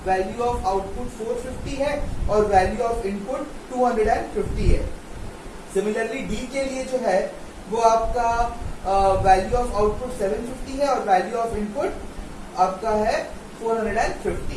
वैल्यू ऑफ आउटपुट 450 है और वैल्यू ऑफ इनपुट 250 है। सिमिलरली डी के लिए जो है वो आपका वैल्यू ऑफ आउटपुट 750 है और वैल्यू ऑफ इनपुट आपका है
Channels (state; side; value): identical; both; correlation 1.00